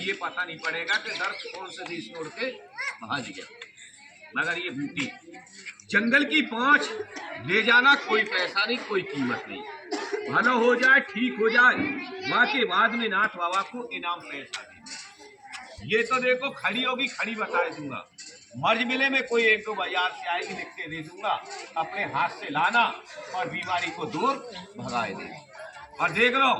पता नहीं पड़ेगा कि दर्द कौन से देश छोड़ के भाग गया। मगर ये बूटी जंगल की 5 ले जाना, कोई पैसा नहीं, कोई कीमत नहीं, भला हो जाए, ठीक हो जाए, वहां के बाद में नाथ बाबा को इनाम पैसा देना। ये तो देखो खड़ी होगी, खड़ी बता दूंगा, मर्ज मिले में कोई 1-2 बाजार से आएगी, लिख के दे दूंगा, अपने हाथ से लाना और बीमारी को दूर भगाए दे। और देख लो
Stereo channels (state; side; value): identical; both; correlation 1.00